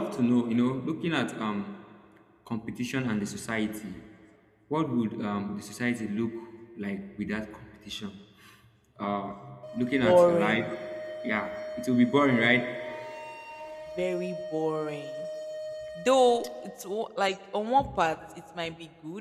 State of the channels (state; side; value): identical; both; correlation 1.00